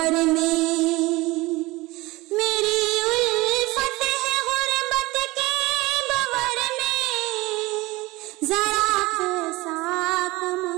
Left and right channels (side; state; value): left; quieter; 21.1 dB